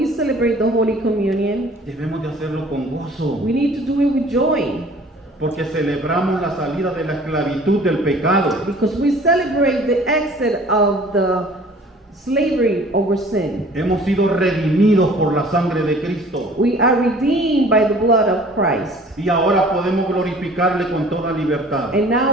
celebrate the Holy Communion, debemos de hacerlo con gozo, we need to do it with joy, porque celebramos la salida de la esclavitud del pecado. because we celebrate the exit of the slavery over sin. Hemos sido redimidos por la sangre de Cristo. We are redeemed by the blood of Christ. Y ahora podemos glorificarle con toda libertad. And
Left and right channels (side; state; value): both; normal; correlation 0.50